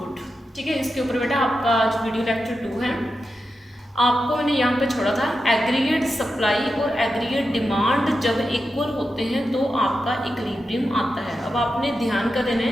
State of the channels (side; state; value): both; normal; correlation 0.89